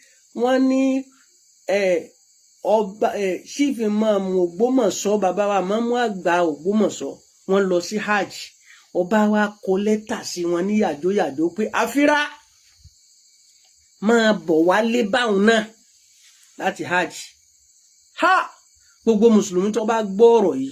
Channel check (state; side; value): identical; both; correlation 1.00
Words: wọ́n ní ọba chief imam Ògbómọ̀ṣọ́ bàbá wa mọ́mú àgbà Ògbómọ̀ṣọ́ wọ́n lọ sí hajj ọba wa kọ lẹ́tà sí wọn ní yàjóyàjó pé àfírá máa bọ̀ wálé báwọn náà láti hajj. Gbogbo mùsùlùmí tó bá gbọ́ ọ̀rọ̀